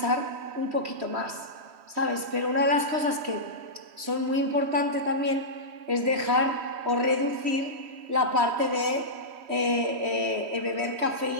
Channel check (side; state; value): left; late; 3.1 ms